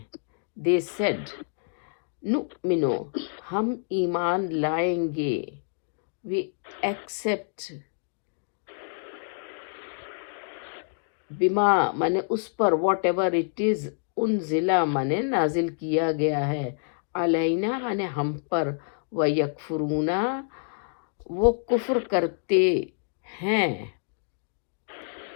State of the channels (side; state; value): right; silent; digital silence